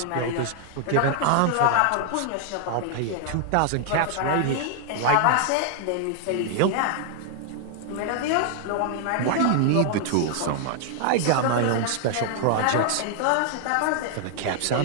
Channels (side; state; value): both; different; correlation 0.00